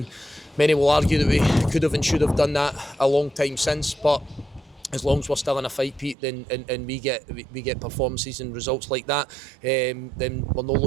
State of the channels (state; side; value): drops out; left; at 6.2 s